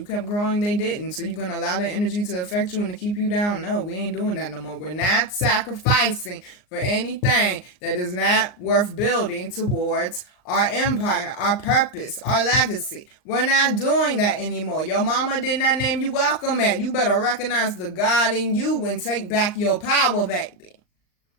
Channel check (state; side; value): late; right; 39 ms